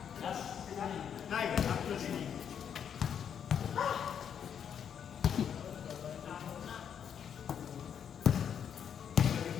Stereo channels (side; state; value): right; quieter; 8.2 dB